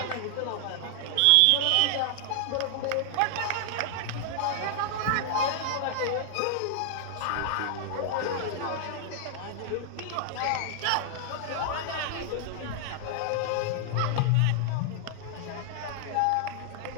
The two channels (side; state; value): both; different; correlation -0.01